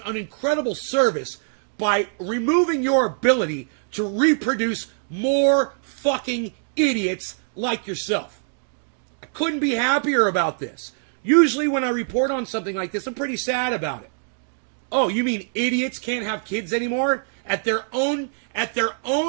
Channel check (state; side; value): silent; left; digital silence